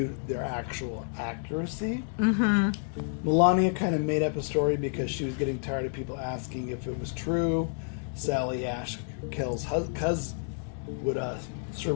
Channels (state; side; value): silent; right; digital silence